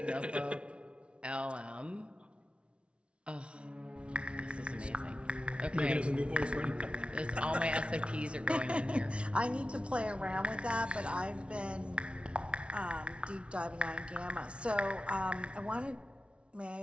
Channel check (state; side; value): late; left; 0.059 ms